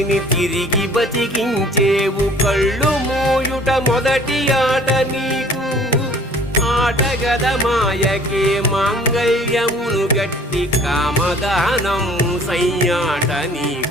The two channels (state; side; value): normal; both; correlation 0.52